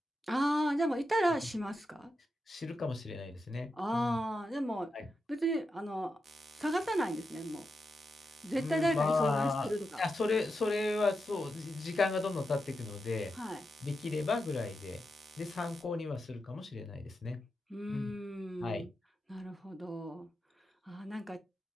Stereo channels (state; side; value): normal; both; correlation 0.88